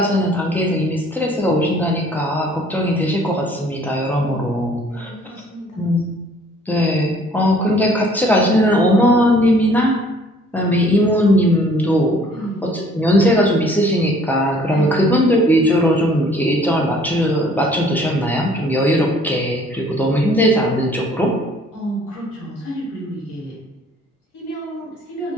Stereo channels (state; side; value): normal; both; correlation 0.57